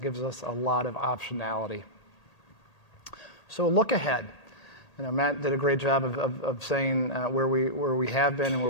us a lot of optionality. So look ahead. Matt did a great job of saying where we have been and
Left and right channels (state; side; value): late; right; 1.8 ms